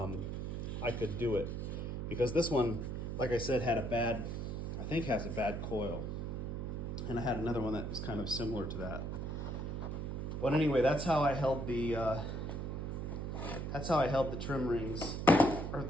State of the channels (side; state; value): right; noise; hum, 3 dB below the sound